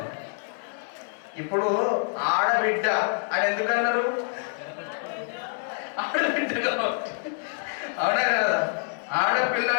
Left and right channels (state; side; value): silent; right; 61 dB below the other